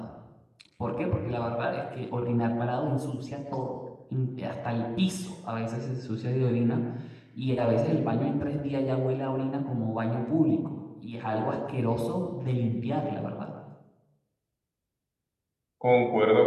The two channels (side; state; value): both; identical; correlation 1.00